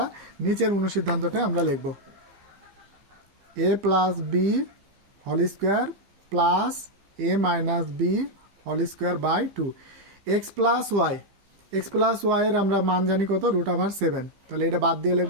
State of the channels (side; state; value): left; late; 15 ms